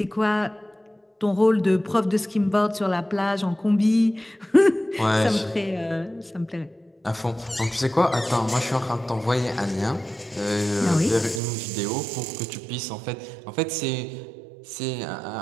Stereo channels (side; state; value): left; drops out; at 11.4 s